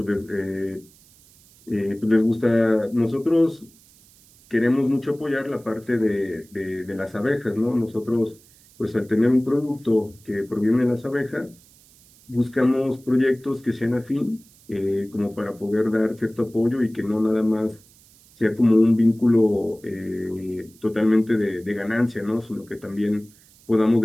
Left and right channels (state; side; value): noise; right; hiss, 27 dB below the sound